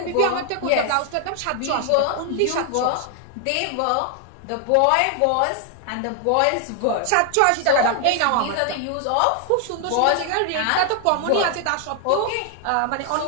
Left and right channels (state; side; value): different; both; correlation 0.00